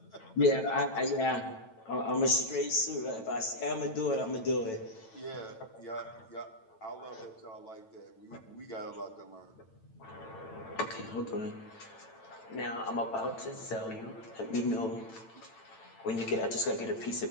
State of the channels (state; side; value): late; right; 9.0 ms